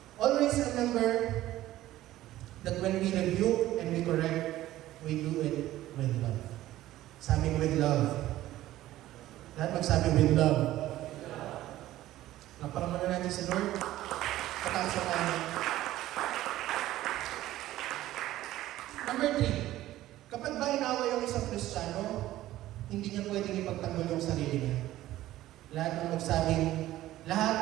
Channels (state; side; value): quieter; left; 14.9 dB